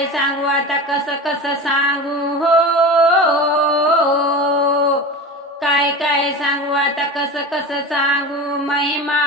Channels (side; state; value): both; normal; correlation 0.29